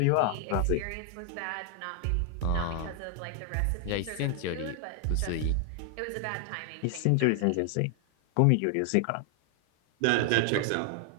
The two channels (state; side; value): different; both; correlation 0.00